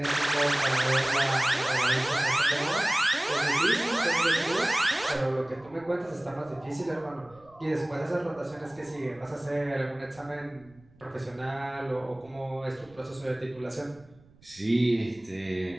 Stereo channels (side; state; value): right; noise; rumble, 27 dB below the sound